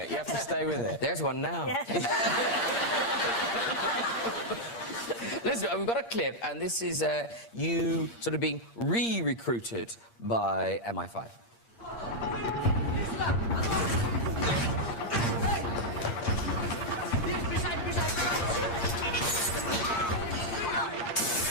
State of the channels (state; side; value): late; right; 8.6 ms